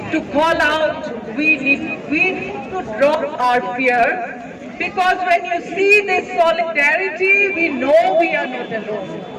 to call out. We need to drop our fear. Because when you see this solidarity, we know we are not alone.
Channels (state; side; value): identical; both; correlation 1.00